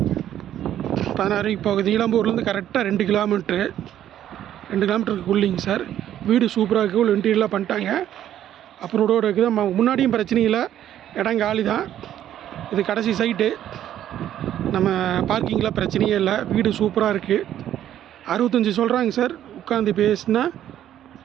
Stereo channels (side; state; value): left; quieter; 11.3 dB